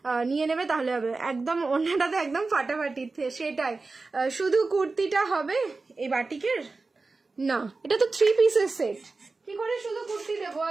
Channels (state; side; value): quieter; left; 3.8 dB